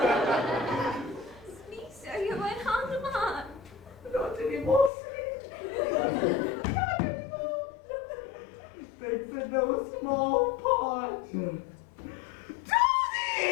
Me, sir, you went on the man. Not anymore, sweet. Not anymore. Thanks in no small part. Do this!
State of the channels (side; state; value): right; drops out; at 4.9 s